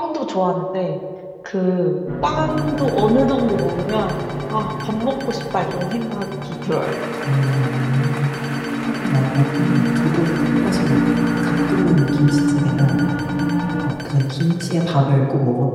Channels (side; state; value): both; identical; correlation 1.00